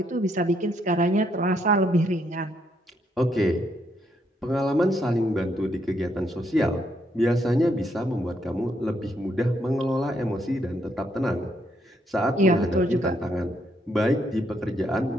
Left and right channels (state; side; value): normal; both; correlation 0.74